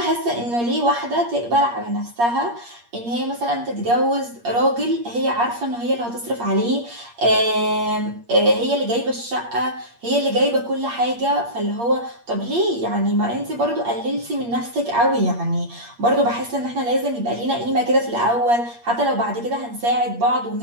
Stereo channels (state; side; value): late; left; 8.5 ms